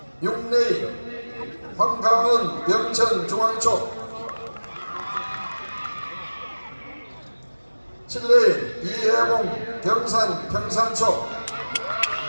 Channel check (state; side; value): inverted; both; correlation -1.00